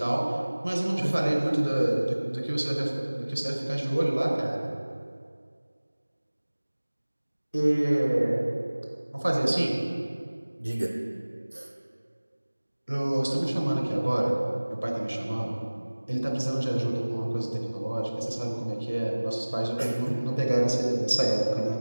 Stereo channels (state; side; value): inverted; both; correlation -1.00